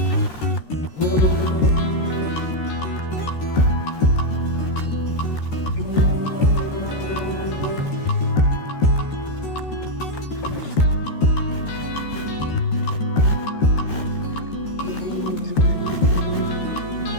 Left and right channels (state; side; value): late; right; 13 ms